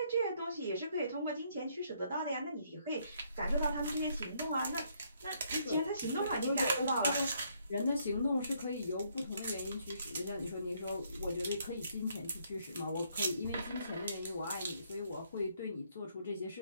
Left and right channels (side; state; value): both; inverted; correlation -0.70